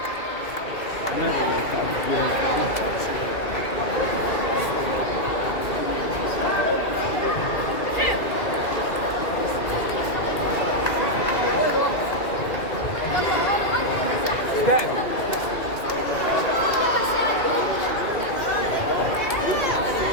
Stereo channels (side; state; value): right; late; 2.3 ms